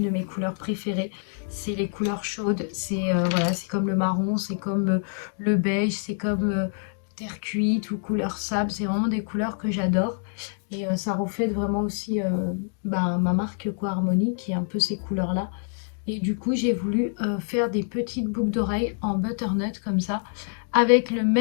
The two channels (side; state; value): right; silent; 61 dB below the other